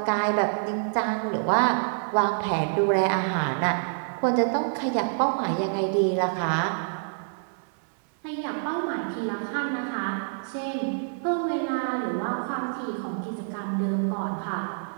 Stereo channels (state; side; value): silent; left; 60 dB below the other